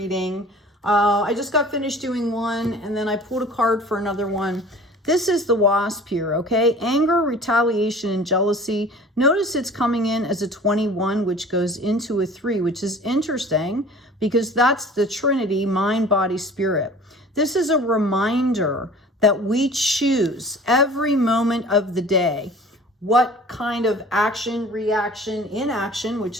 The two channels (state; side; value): normal; both; correlation 0.45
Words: I just got finished doing one, and then I pulled a card for another one. This is the Wasp here, okay? Anger, retaliation, and jealousy. Notice it's coming in as a 21, which goes into a 3, which is interesting because that's the Trinity, mind, body, spirit. This is a reminder that we choose every moment of the day what kind of action, reaction, inaction, which